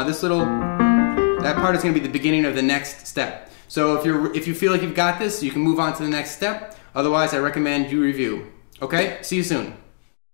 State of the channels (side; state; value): right; silent; digital silence